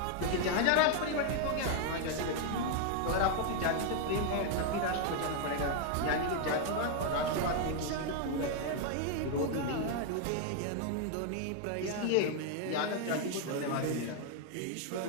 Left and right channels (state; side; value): different; both; correlation 0.00